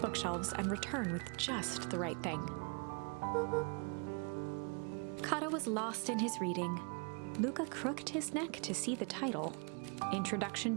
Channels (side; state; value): left; quieter; 35.4 dB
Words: bookshelves and return with just the right thing. Kato was lost in his reading. Luca crooked his neck to see the title,